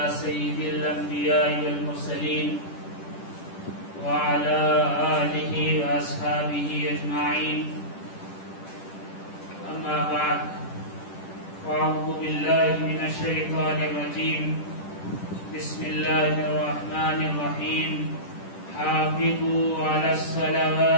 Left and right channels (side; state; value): right; late; 10 ms